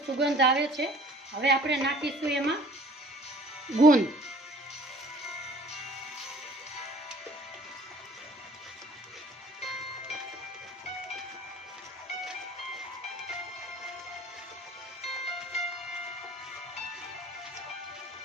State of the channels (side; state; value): both; normal; correlation 0.51